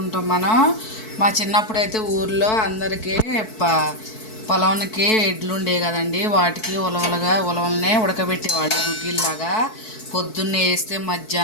మనం. మా చిన్నప్పుడు అయితే ఊర్లో అందరికీ పొలంకి ఎడ్లు ఉండేవి కదండి. వాటికి ఉలవలనే ఉడకబెట్టేవాళ్ళు గుగ్గిల్లాగా. పొద్దున్నే వేస్తే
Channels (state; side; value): late; right; 4.6 ms